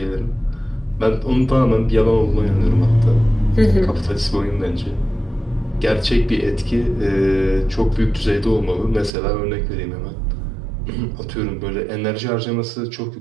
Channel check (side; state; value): left; drops out; at 9.1 s